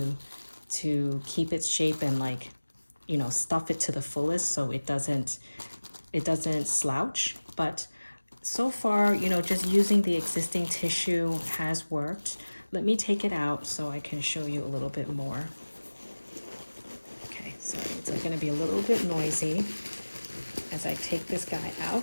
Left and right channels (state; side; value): inverted; both; correlation -1.00